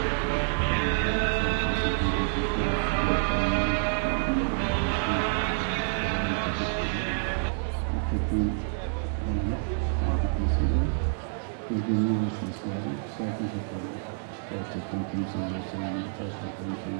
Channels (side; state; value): left; silent; digital silence